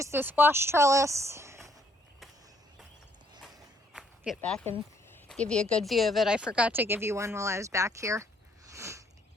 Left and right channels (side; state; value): both; normal; correlation 0.67